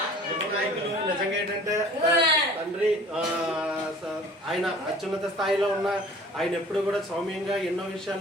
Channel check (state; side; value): normal; both; correlation 0.47